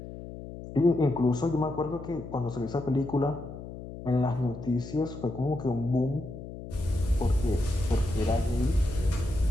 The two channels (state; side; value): noise; left; hum, 12 dB below the sound